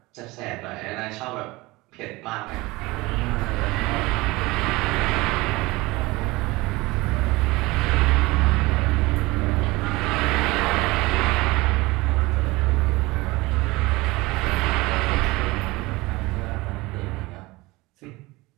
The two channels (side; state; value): left; quieter; 21.7 dB